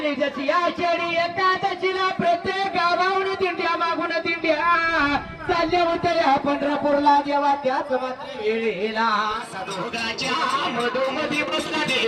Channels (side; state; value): both; identical; correlation 1.00